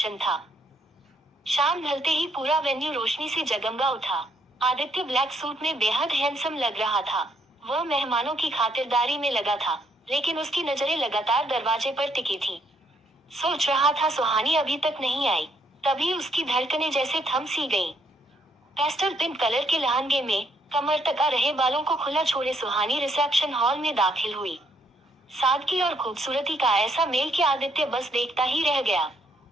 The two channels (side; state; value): both; normal; correlation 0.71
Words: था। शाम ढलते ही पूरा वेन्यू रोशनी से जगमगा उठा। आदित्य ब्लैक सूट में बेहद हैंडसम लग रहा था। वह मेहमानों की खातिरदारी में लगा था, लेकिन उसकी नजरें लगातार दरवाजे पर टिकी थी। सोच रहा था सुहानी अभी तक नहीं आई। तभी उसकी धड़कनें जैसे थम सी गईं। पेस्टल पिंक कलर के लहंगे में कमर तक आ रहे बालों को खुला छोड़े सुहानी रिसेप्शन हॉल में दाखिल हुई। सादगी और खूबसूरती का ऐसा मेल कि आदित्य बस देखता ही रह गया।